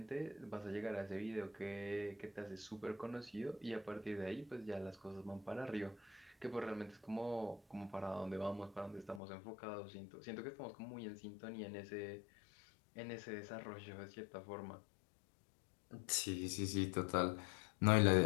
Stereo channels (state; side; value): drops out; right; at 9.2 s